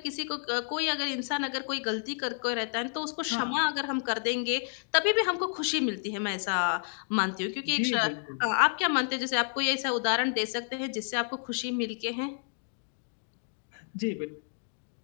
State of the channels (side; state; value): right; silent; digital silence